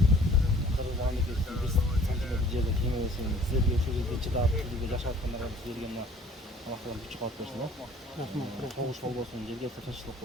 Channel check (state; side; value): normal; both; correlation 0.54